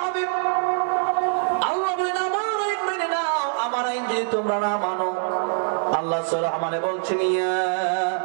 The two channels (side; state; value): left; silent; 63 dB below the other